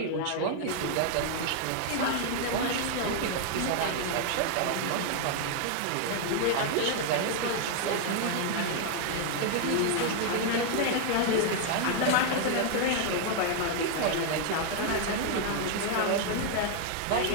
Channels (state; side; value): different; both; correlation 0.00